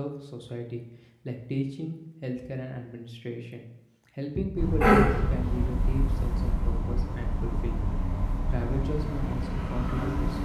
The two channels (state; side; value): identical; both; correlation 1.00